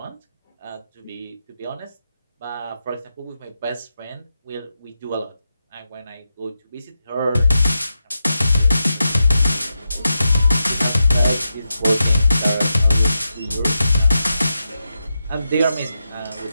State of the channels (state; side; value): inverted; both; correlation -0.88